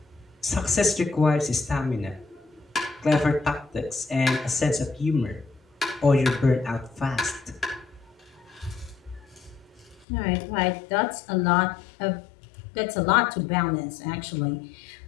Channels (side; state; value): right; drops out; at 10.1 s